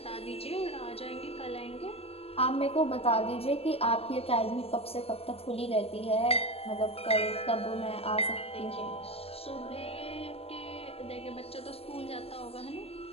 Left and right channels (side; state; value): right; late; 0.28 ms